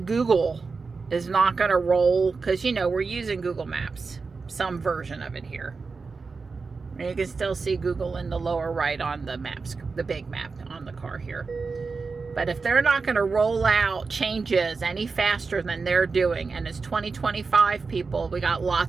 Google is not going to roll, because, you know, we're using Google Maps, some version of it here. And you can still see Google in the lower right on the maps, the big map on the car here. But if they're not going to roll out changes any faster than they're doing, and it's 2025, people, we got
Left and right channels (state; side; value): quieter; left; 4.5 dB